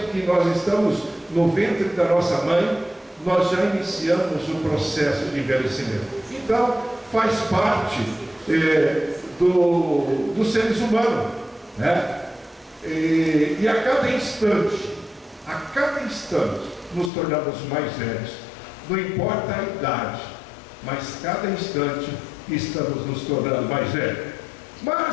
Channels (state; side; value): drops out; right; at 17.1 s